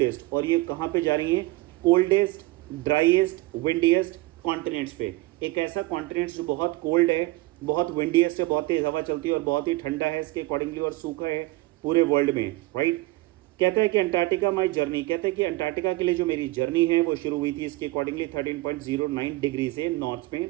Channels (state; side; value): quieter; left; 20.1 dB